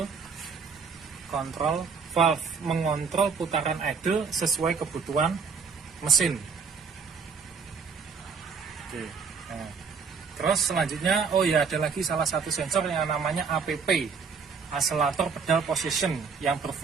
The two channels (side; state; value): left; quieter; 5.6 dB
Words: control valve, mengontrol putaran idle sesuai kebutuhan mesin. Oke. Nah, terus selanjutnya ada lagi salah satu sensor yang namanya APP, Accelerator Pedal Position, yang